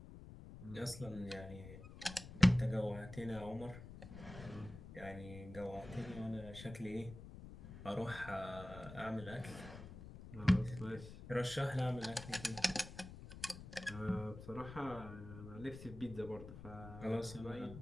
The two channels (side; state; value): left; noise; rumble, 13 dB below the sound